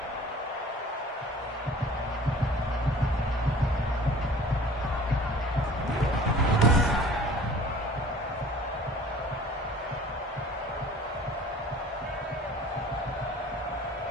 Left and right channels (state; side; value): normal; both; correlation 0.47